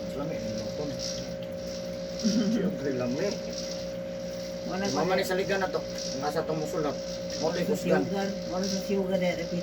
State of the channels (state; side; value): identical; both; correlation 1.00